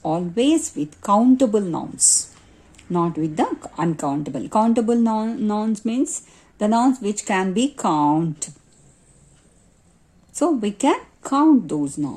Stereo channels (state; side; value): identical; both; correlation 1.00